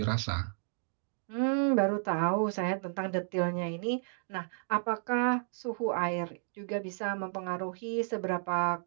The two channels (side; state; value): left; silent; digital silence